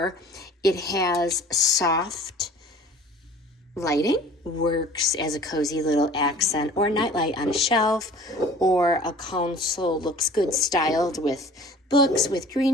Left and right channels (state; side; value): normal; both; correlation 0.47